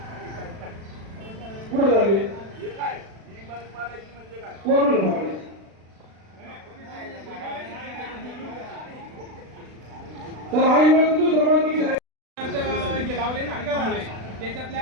पुढे झाले हे काय ही इमारत पाडायची म्हणजे काय? कोण लावले? तर आई वेळ दुसरं माणूस आहे. हे लावले ना थांबले.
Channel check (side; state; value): left; late; 36 ms